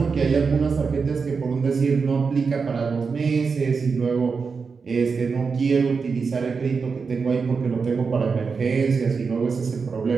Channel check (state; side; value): quieter; left; 5.1 dB